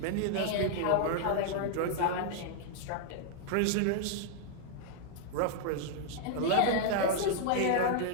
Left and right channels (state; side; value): different; both; correlation -0.01